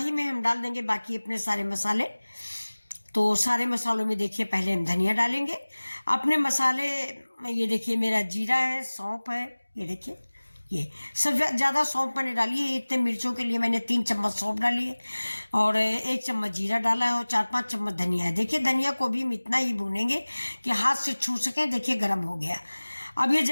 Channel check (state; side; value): inverted; both; correlation -1.00